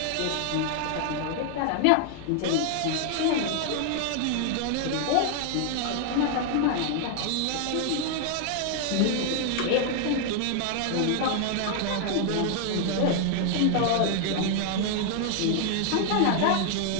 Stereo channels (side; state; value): both; different; correlation 0.00